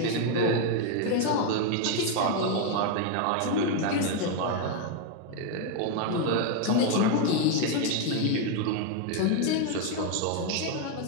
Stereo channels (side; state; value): both; different; correlation 0.01